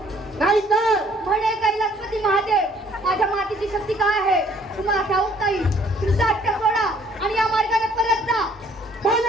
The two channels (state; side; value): normal; both; correlation 0.60